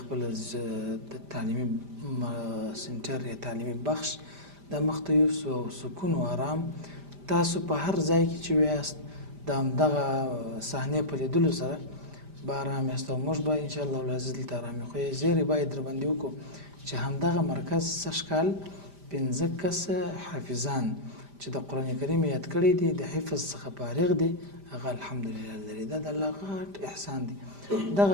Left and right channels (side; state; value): left; late; 5.0 ms